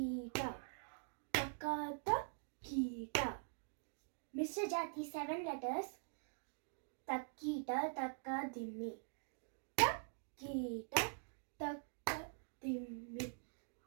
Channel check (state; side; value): silent; left; digital silence